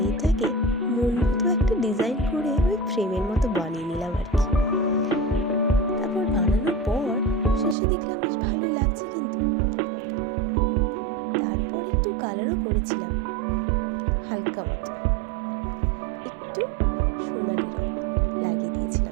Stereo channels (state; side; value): drops out; left; at 7.8 s